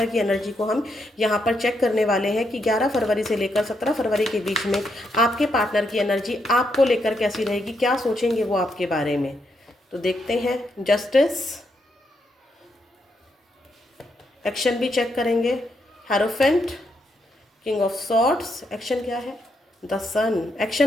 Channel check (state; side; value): normal; both; correlation 0.79